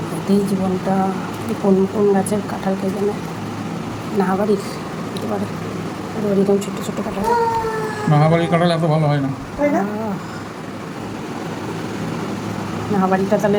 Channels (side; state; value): both; identical; correlation 1.00